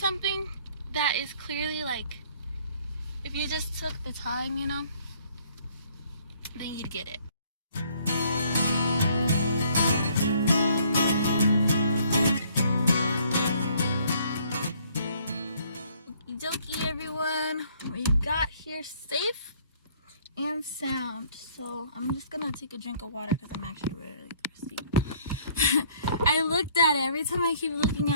that is clearly like, if you just took the time, you know, then you'd get it. Okie dokie, everyone, we got here safe and sound. So I'm just gonna take a drink of water because I'm actually really thirsty. I looked at it, every time I keep looking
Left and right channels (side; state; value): both; inverted; correlation -0.61